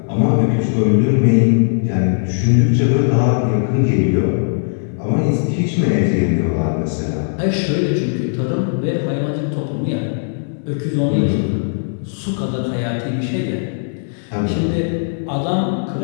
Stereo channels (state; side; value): silent; right; digital silence